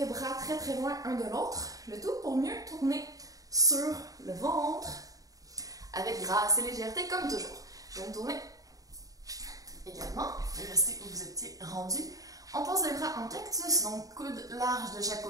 bras très très loin un de l'autre. Le tout pour mieux tourner sur le ventre avec grâce et légèreté comme toujours. Je vais me tourner également et rester où vous étiez rendu. On pose les bras en cactus, donc coudes larges de chaque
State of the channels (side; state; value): left; late; 0.17 ms